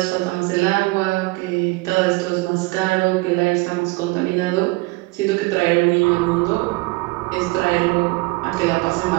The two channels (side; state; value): left; quieter; 23.8 dB